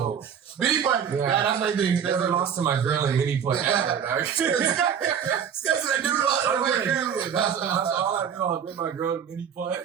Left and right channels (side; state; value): left; quieter; 8.0 dB